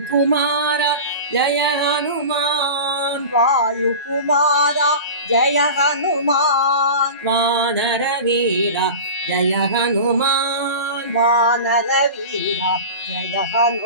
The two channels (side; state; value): both; inverted; correlation -0.32